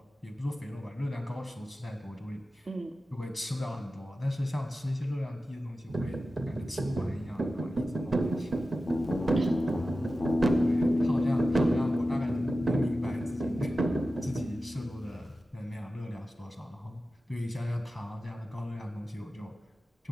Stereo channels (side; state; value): both; normal; correlation 0.93